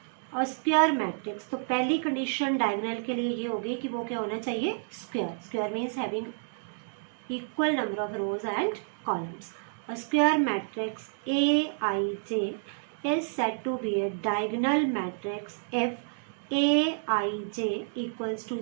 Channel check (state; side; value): silent; left; digital silence